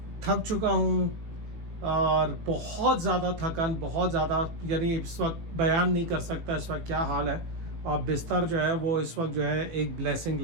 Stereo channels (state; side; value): late; left; 19 ms